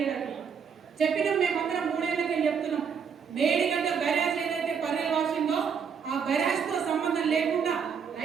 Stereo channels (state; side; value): quieter; left; 6.7 dB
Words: చెప్పినాం. మేమందరం 3 ఏళ్ళకే చెప్తున్నాం. మేడిగడ్డ బ్యారేజ్ ఏదైతే పర్రెల్ వాషిందో ఆ బ్యారేజ్ తో సంబంధం లేకుండా